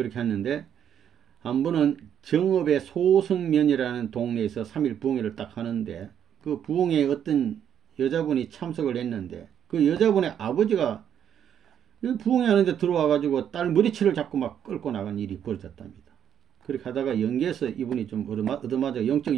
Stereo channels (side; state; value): left; quieter; 9.2 dB